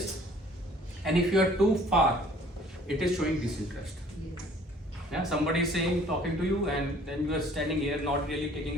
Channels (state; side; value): normal; both; correlation 0.55